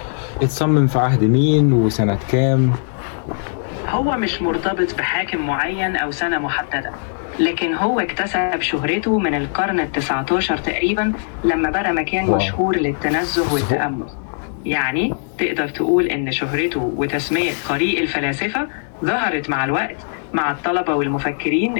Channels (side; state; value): right; silent; digital silence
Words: اتصمم في عهد مين وسنة كام؟ هو مش مرتبط بحاكم معين أو سنة محددة، لكن هو اكتسب شهرته من القرن ال19 تقريبا لما بقى مكان مشهور للتنزه والتأمل. يعني تقدر تقول إن شهرته وتسمية طريق الفلاسفة ظهرت مع الوقت مع الطلبة والمفكرين